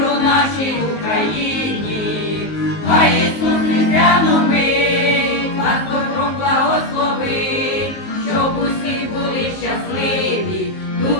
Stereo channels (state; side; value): late; right; 19 ms